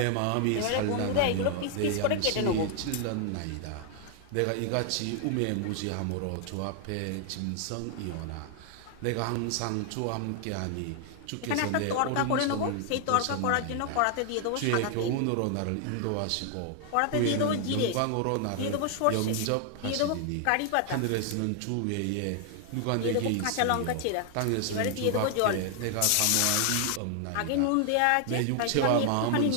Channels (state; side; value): different; both; correlation 0.00